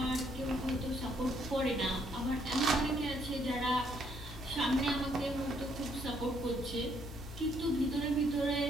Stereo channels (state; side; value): normal; both; correlation 0.70